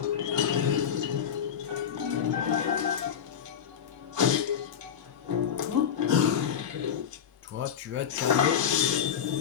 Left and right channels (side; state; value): right; quieter; 8.2 dB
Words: Toi, tu vas te calmer